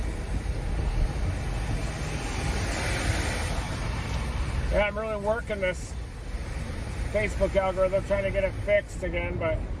Yeah, I'm really working this Facebook algorithm, trying to get it fixed again, but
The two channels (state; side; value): identical; both; correlation 1.00